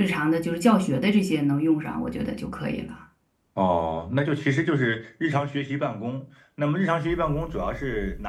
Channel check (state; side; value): identical; both; correlation 1.00